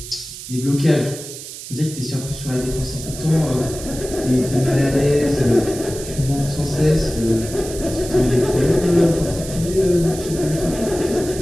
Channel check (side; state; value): right; noise; hiss, 12 dB below the sound